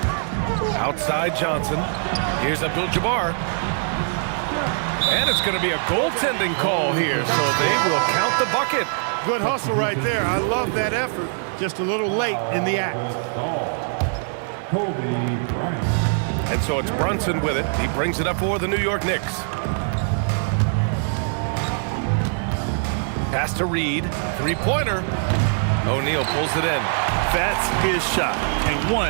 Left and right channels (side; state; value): left; silent; digital silence